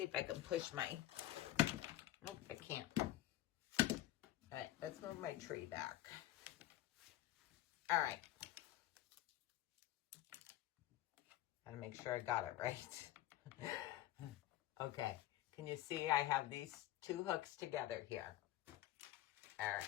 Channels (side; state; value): right; quieter; 14.5 dB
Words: if I can push my, nope, I can't. All right, let's move my tree back. All right. Gotta make sure I got it right. Okay, can you see I have these 2 hooks together here? All